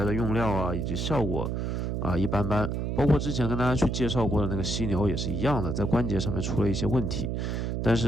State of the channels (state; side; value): noise; right; hum, 1 dB below the sound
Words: 的用料啊以及效果啊一般般。包括之前跟大家去介绍过的那个犀牛也是一样的，在关节上面出了一些问题。但